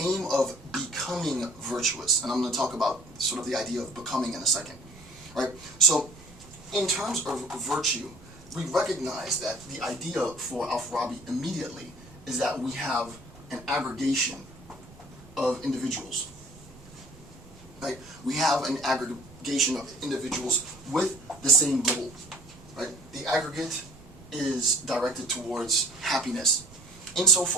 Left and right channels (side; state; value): right; noise; rumble, 21 dB below the sound